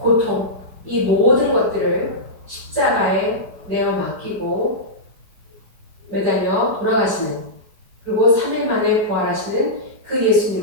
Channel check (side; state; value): left; late; 4.9 ms